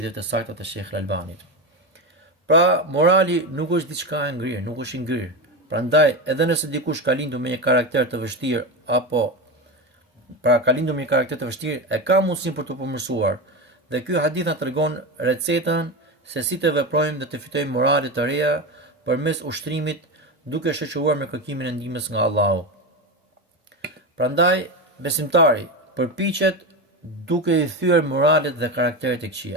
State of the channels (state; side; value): normal; both; correlation 0.18